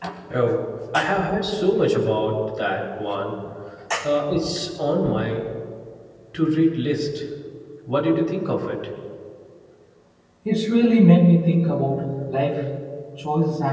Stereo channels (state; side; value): identical; both; correlation 1.00